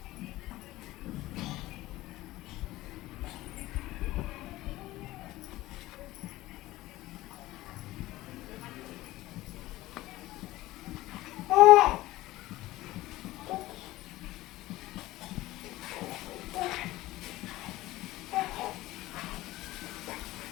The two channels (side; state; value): right; quieter; 17.5 dB